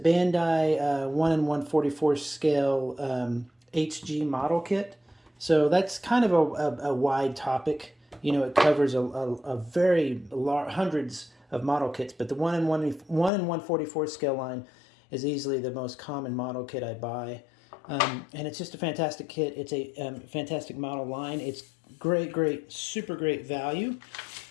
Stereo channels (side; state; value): right; drops out; at 13.3 s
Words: 1 in 144 scale HG model kit. So that's kind of a wide topic. You know, it covers a very large, hundreds of model kits, but the 1 in 144 scale line is easily the most common model kit I buy. And it's just a fantastic kit. It's a fantastic model line. It's great, super great value.